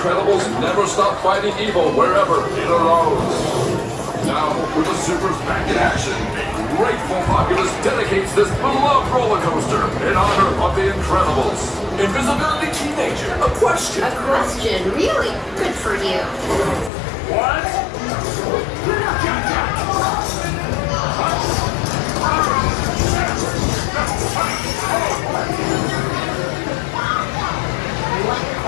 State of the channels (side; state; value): right; drops out; at 16.9 s